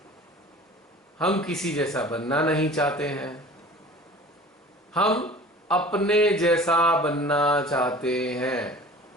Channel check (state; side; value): normal; both; correlation 0.43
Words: हम किसी जैसा बनना नहीं चाहते हैं, हम अपने जैसा बनना चाहते हैं।